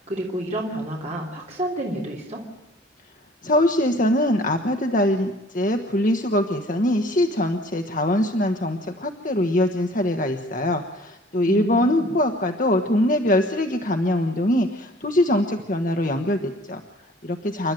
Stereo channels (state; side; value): normal; both; correlation 0.52